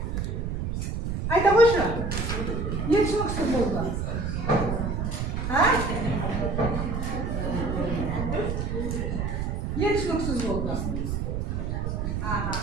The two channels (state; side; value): noise; right; rumble, 1 dB below the sound